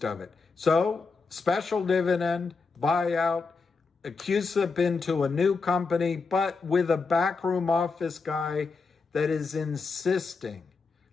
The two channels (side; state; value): right; quieter; 4.5 dB